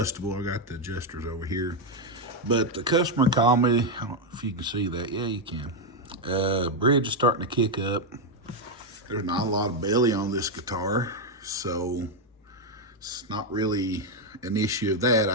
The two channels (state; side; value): normal; both; correlation 0.03